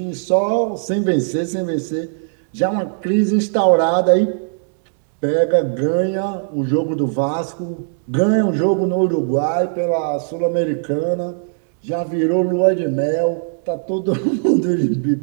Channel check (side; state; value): left; silent; digital silence